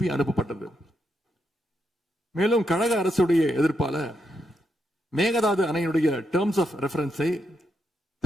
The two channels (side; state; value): both; normal; correlation 0.82